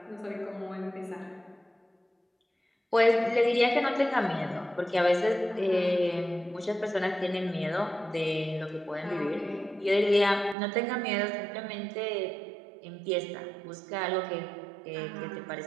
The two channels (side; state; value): left; drops out; at 10.6 s